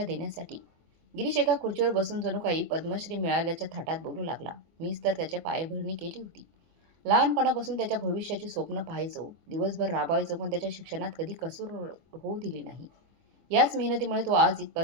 देण्यासाठी. गिरीश एका खुर्चीवर बसून जणू काही पद्मश्री मिळाल्याच्या थाटात बोलू लागला. मीच तर त्याच्या पायभरणी केली होती. लहानपणापासून त्याच्या भविष्याची स्वप्न पाहायचो, दिवसभर राबायचो, पण त्याच्या शिक्षणात कधी कसूर होऊ दिली नाही. याच मेहनतीमुळे तो आज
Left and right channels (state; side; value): late; left; 24 ms